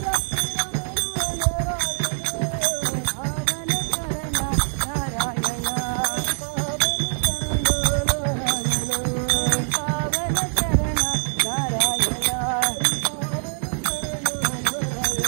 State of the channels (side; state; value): left; silent; 63 dB below the other